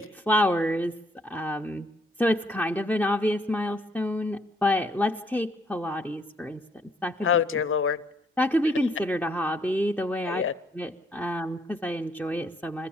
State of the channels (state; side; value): normal; both; correlation 0.68